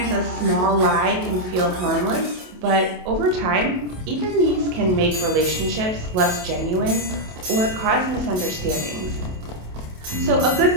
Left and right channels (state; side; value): late; left; 27 ms